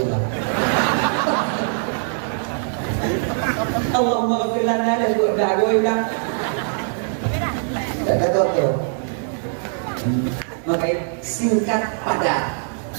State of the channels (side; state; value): left; silent; 63 dB below the other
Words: Allahumma ghafir lana dan doa gue bilang tak tahu tu. Maka singkat padat.